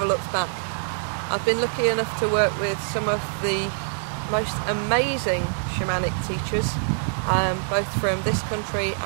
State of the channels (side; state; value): left; silent; 55 dB below the other